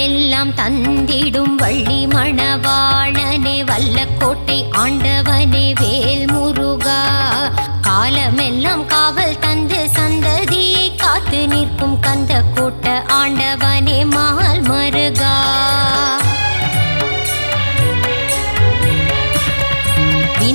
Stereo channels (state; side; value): inverted; both; correlation -1.00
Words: தந்திடும் வள்ளி மணவாளனே வல்லக்கோட்டை ஆண்டவனே வேல் முருகா. காலமெல்லாம் காவல் தந்து சந்ததியை காத்து நிற்கும் கந்த கோட்ட ஆண்டவனே மால் மருகா.